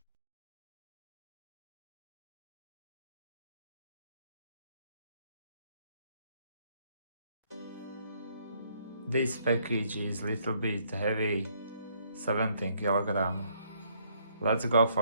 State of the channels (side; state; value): both; inverted; correlation -0.69